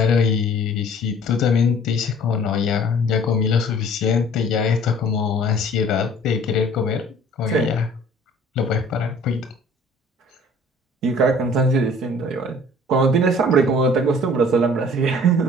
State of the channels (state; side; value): normal; both; correlation 0.51